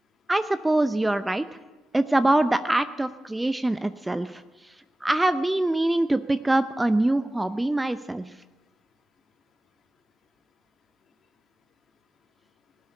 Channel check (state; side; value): normal; both; correlation 0.97